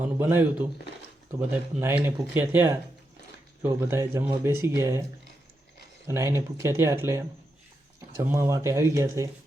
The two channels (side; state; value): both; normal; correlation 0.85